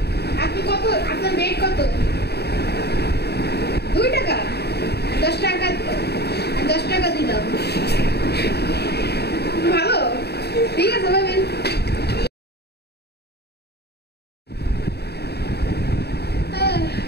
আপনি কত, আপনার রেট কত? 2 টাকা? 10 টাকা, 10 টাকা দিলাম। ভালো, ঠিক আছে ভাবেন।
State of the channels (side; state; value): right; late; 0.48 ms